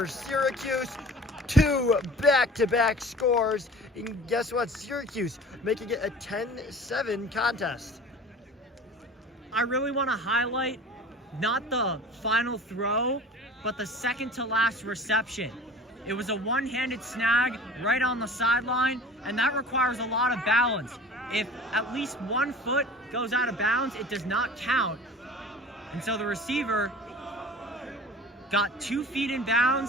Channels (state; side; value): normal; both; correlation 0.42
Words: Syracuse. 2 back-to-back scores. And guess what? Syracuse making it a 10-7 contest. I really want to highlight not the final throw, but the second to last reception. It was a one-handed snag right on the sideline, and that requires a lot of balance. If at least 1 foot goes out of bounds, it does not count. And so the receiver got 2 feet in